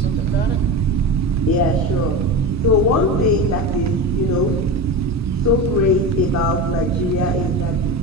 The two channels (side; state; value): both; normal; correlation 0.24